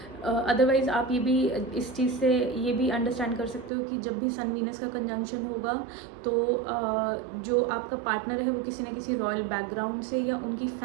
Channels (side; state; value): left; drops out; at 3.7 s